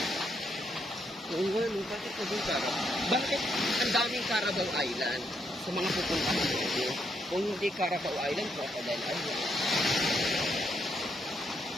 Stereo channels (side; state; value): both; normal; correlation 0.76